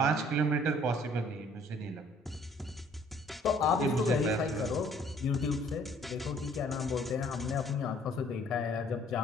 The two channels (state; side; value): normal; both; correlation 0.59